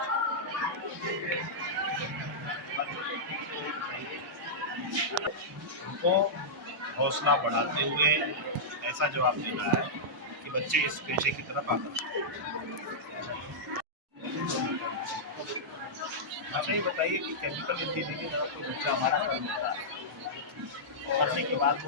उनको हौसला बढ़ाते हुए ऐसा जवाब देना है कि बच्चे इस पेशे की तरफ आकर्षित। अच्छा ये बताइए कि केमिकल इंजीनियरिंग अगर कोई बच्चा हमारा करने के बाद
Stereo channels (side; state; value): both; normal; correlation -0.11